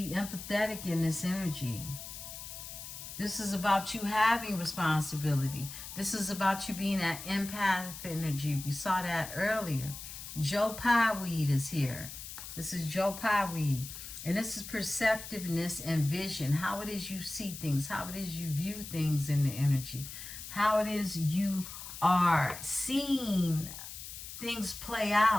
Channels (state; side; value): noise; left; hiss, 11 dB below the sound